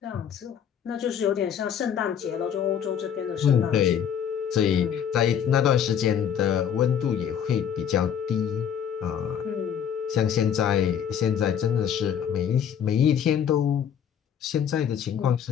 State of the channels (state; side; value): quieter; right; 8.5 dB